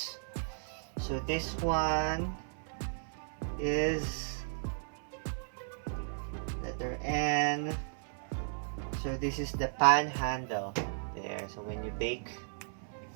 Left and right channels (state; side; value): silent; left; 54 dB below the other